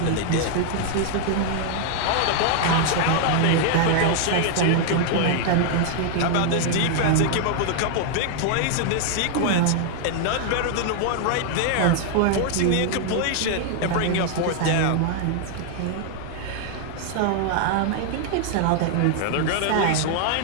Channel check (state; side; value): different; both; correlation 0.00